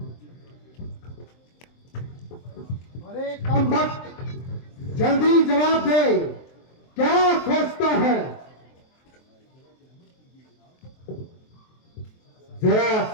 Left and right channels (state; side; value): late; right; 23 ms